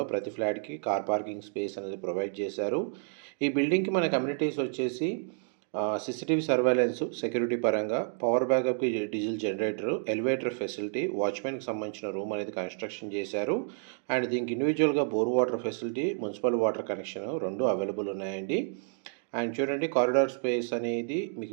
ప్రతి ఫ్లాట్కి కార్ పార్కింగ్ స్పేస్ అనేది ప్రొవైడ్ చేశారు. ఈ బిల్డింగ్కి మన కమ్యూనిటీస్ వచ్చేసి CCTV సర్వేలెన్స్, సెక్యూరిటీ పరంగా పవర్ బ్యాకప్కి డీజిల్ జనరేటర్, ఎలివేటర్ ఫెసిలిటీ, వాచ్మెన్కి సంబంధించిన రూమ్ అనేది కన్స్ట్రక్షన్ చేశారు. అండ్ దీనికి ఇండివిజువల్గా bore water facility, municipal water connection రెండు అవైలబుల్ ఉన్నాయండి. అండ్ చూడండి, కారిడార్ స్పేస్ అనేది మీకు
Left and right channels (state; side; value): silent; left; digital silence